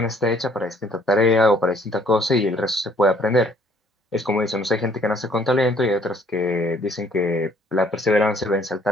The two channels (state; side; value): normal; both; correlation 0.62